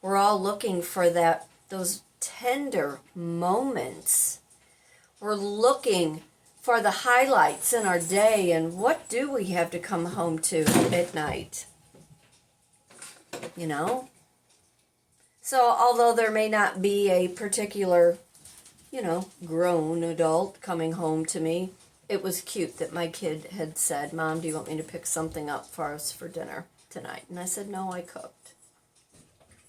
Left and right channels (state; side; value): identical; both; correlation 1.00